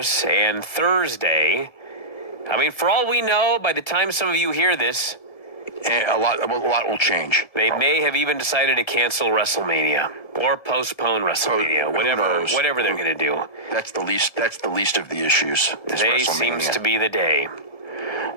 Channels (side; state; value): right; late; 1.7 ms